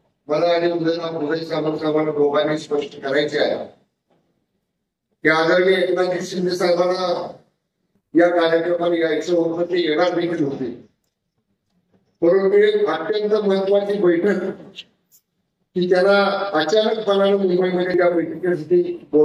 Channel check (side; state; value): both; identical; correlation 1.00